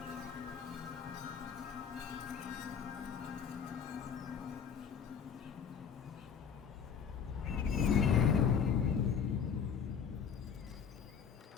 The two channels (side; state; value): right; quieter; 7.1 dB